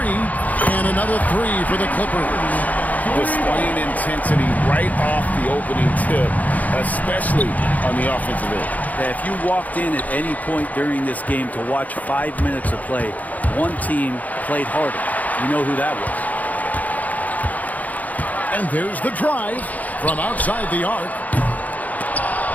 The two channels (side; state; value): right; late; 0.077 ms